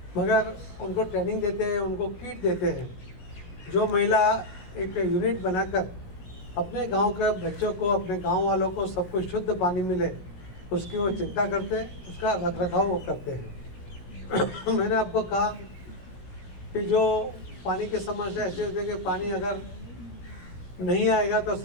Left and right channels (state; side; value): late; right; 17 ms